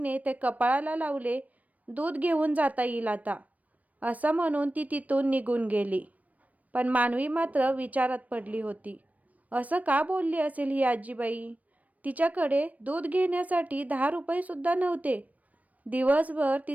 ते कपाळाला लावले. दूध घेऊन जाता येईल आता, असं म्हणून ती तिथून निघून गेली. पण मानवी मात्र विचारात पडली होती. असं का बोलली असेल ही आजीबाई. तिच्याकडे दूध घेण्यासाठी 10 रुपये सुद्धा नव्हते. दिवसभर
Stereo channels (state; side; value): late; left; 0.071 ms